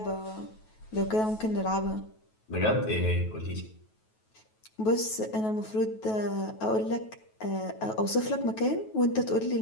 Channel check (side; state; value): right; late; 9.2 ms